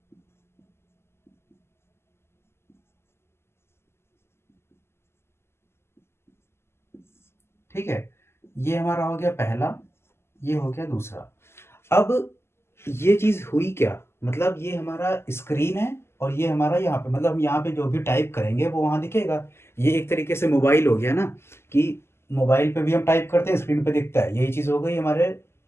ठीक है? ये हमारा हो गया पहला, ये हो गया दूसरा। अब ये चीज़ हुई क्या? मतलब ये हमारा स्क्रीन है और ये हमारा यहाँ पे, मतलब हम यहाँ पे जो भी टाइप करेंगे वो वहाँ दिखेगा। ये एक तरीके से मोबाइल हो गया ना, कि मोबाइल पे भी हम टाइप करते हैं, स्क्रीन पे दिखता है। यही चीज़ हो गई हमारे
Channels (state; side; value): late; right; 0.12 ms